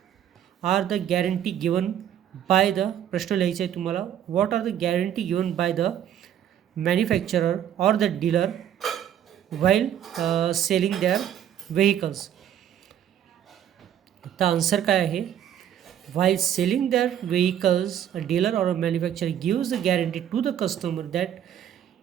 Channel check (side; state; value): left; quieter; 10.2 dB